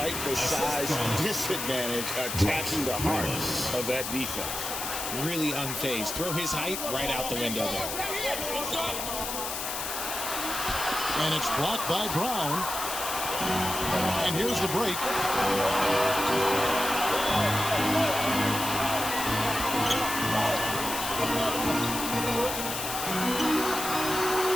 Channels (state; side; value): noise; left; hiss, 4 dB below the sound